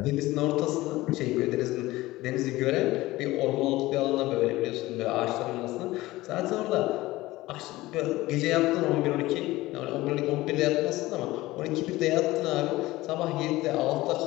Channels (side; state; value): right; quieter; 18.3 dB